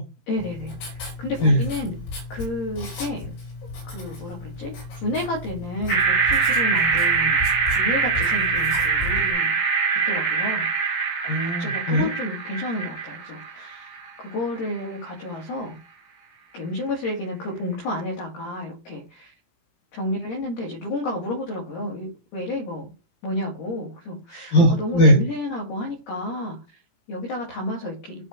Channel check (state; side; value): late; right; 17 ms